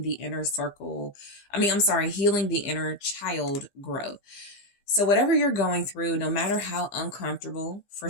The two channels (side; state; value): right; late; 15 ms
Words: inner circle. Healing the inner child growth. So whatever you're going through, no matter how uncomfortable, for